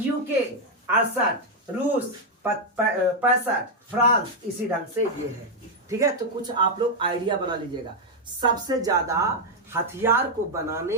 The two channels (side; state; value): both; normal; correlation 0.00